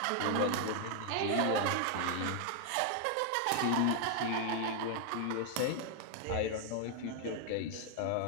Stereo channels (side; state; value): both; different; correlation 0.00